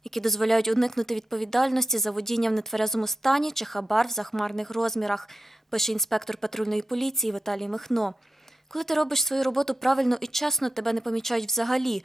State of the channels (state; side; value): normal; both; correlation 0.91